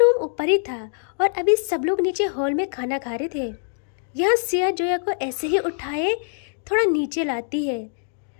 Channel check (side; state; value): right; silent; digital silence